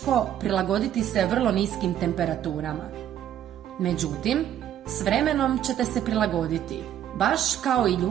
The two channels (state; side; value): quieter; left; 10.8 dB